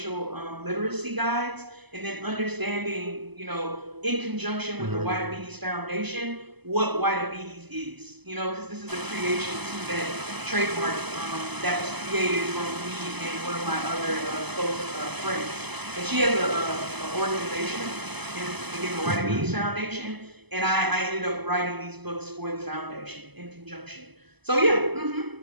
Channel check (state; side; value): late; left; 0.99 ms